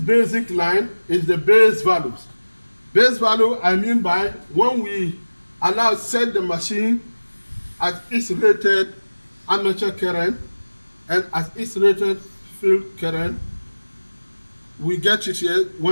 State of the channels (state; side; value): inverted; both; correlation -1.00